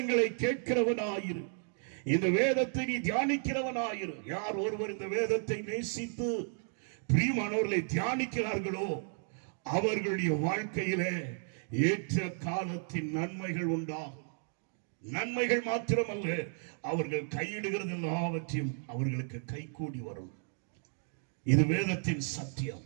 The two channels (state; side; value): silent; left; 55 dB below the other